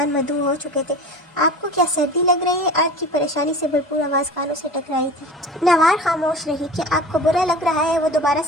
मदऊ हो चुके थे। आपको क्या सर्दी लग रही है? अर्थ की परेशानी से भरपूर आवाज़ कानों से टकराई थी। नवार खामोश रही। कि आपको बुरा लग रहा है? वो दोबारा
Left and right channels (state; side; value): normal; both; correlation 0.36